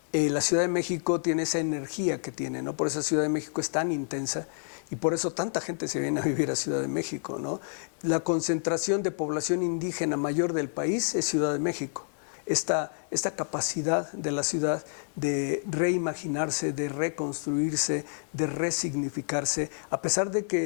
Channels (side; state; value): right; silent; digital silence